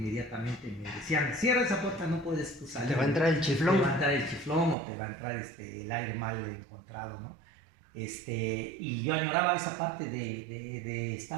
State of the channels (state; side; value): drops out; left; at 4.8 s